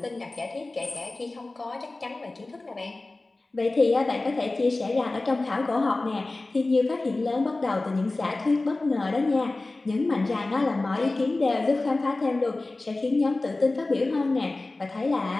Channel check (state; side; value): quieter; right; 3.1 dB